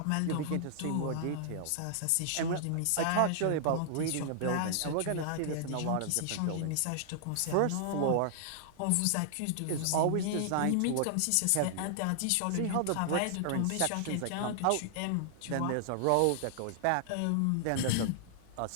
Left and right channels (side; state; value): both; different; correlation -0.01